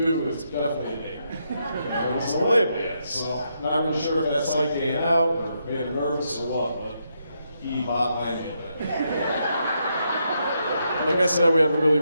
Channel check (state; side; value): inverted; both; correlation -0.80